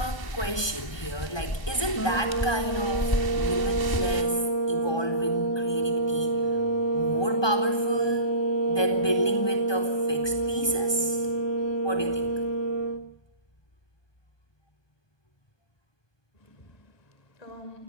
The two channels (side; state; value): right; late; 1.2 ms